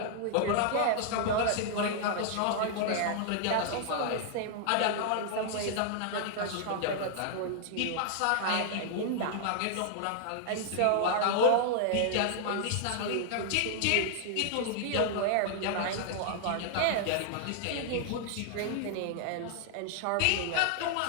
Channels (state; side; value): different; both; correlation -0.01